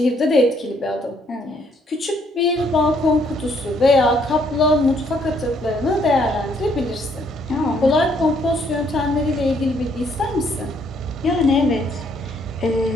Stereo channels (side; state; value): both; normal; correlation 0.68